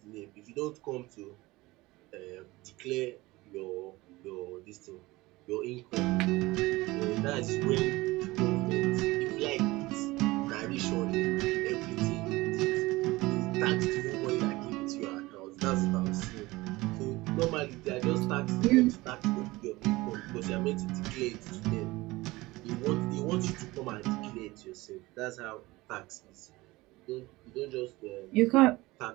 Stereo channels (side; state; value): left; quieter; 20.4 dB